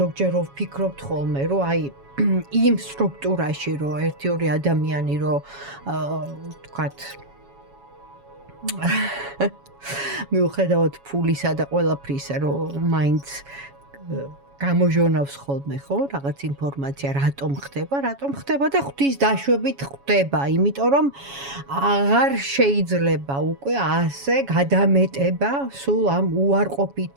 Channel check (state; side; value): late; left; 7.2 ms